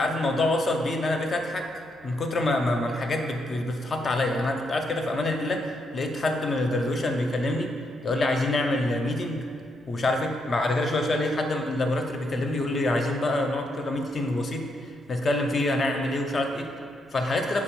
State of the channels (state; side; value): normal; both; correlation 0.78